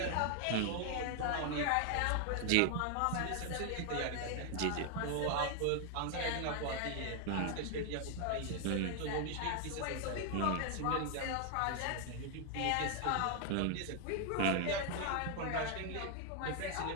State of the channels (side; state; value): both; different; correlation 0.00